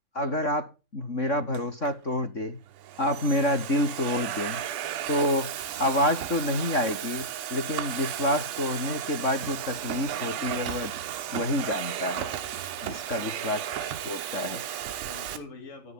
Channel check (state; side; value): late; right; 3.5 ms